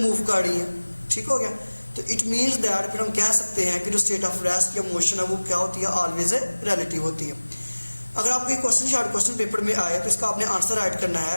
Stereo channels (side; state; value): both; inverted; correlation -1.00